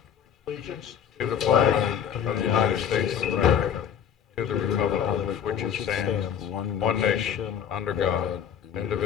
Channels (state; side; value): quieter; right; 8.5 dB